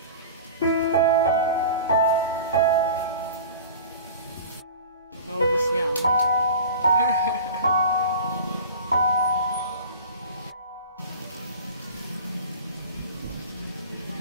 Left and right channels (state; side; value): inverted; both; correlation -0.38